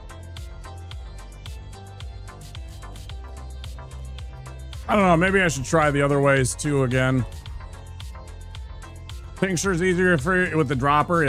I don't know, maybe I should try the other ways too again. Tincture's easier for with the dropper?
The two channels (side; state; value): both; identical; correlation 1.00